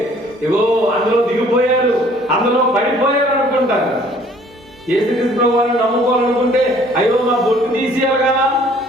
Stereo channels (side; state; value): both; normal; correlation 0.57